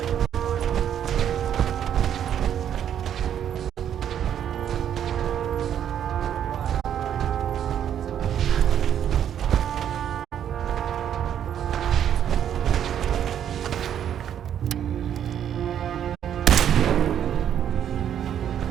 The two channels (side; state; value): left; quieter; 9.6 dB